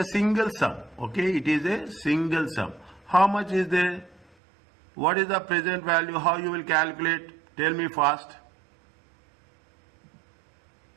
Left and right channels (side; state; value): left; drops out; at 4.2 s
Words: single sum. Okay, it is a single sum. How much is there? What is the present value? How you will calculate? Tell me fast.